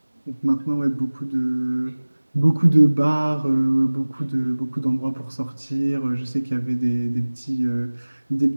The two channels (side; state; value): both; inverted; correlation -1.00